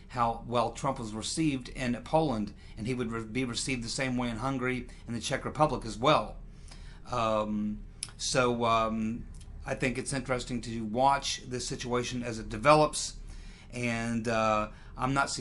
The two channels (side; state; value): both; identical; correlation 1.00